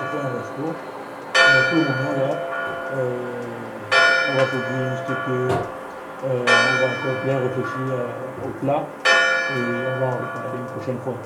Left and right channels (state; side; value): identical; both; correlation 1.00